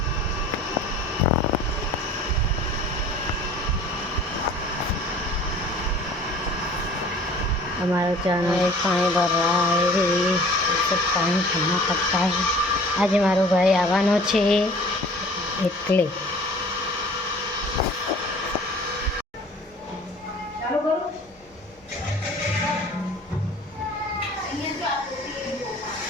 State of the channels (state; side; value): normal; both; correlation 0.48